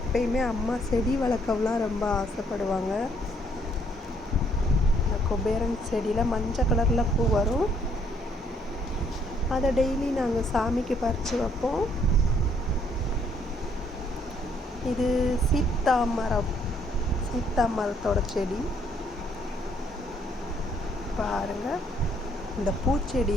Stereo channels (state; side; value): normal; both; correlation 0.67